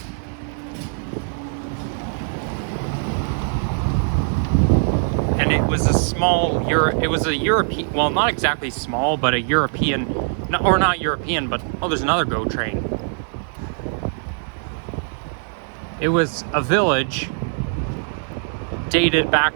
And it was a European, well, not exactly small, but a European, or not European, but, oh, there's another GO train. It was a village dated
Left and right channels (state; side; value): silent; left; digital silence